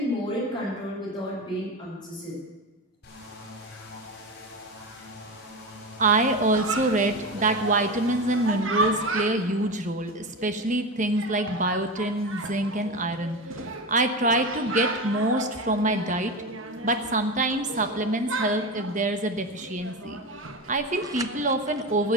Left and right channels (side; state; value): both; normal; correlation 0.22